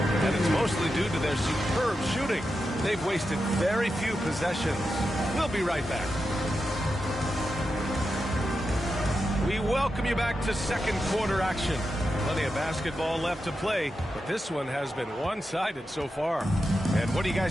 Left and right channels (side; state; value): both; normal; correlation 0.89